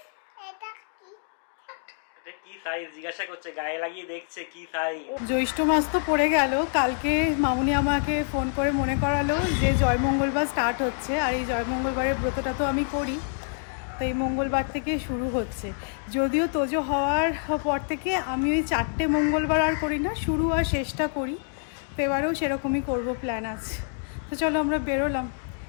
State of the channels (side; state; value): right; silent; 60 dB below the other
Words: এটা কি? এটা কি সাইজ জিজ্ঞাসা করছে, গায়ে লাগিয়ে দেখছে কি সাইজ। জ্যৈষ্ঠ মাস তো পড়ে গেল, কালকে মামুনি আমাকে ফোন করে মনে করালো যে জয়মঙ্গলবার স্টার্ট হচ্ছে, আর এই জয়মঙ্গলবারের ব্রতটা তো আমি করি, তো এই মঙ্গলবার থেকে শুরু হচ্ছে। যদিও তোজো হওয়ার পর থেকে আমি ওই 4টে মঙ্গলবার আর করি না, শুরু আর শেষটা করি, তো এবারেও সেরকমই করবো প্ল্যান আছে। তো চলো আমরা বেরোলাম।